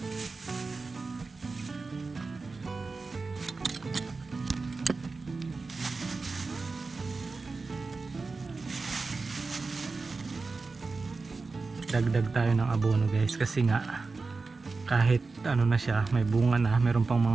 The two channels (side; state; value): left; quieter; 4.0 dB